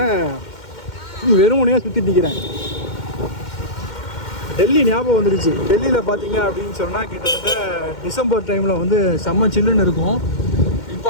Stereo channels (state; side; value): late; right; 2.1 ms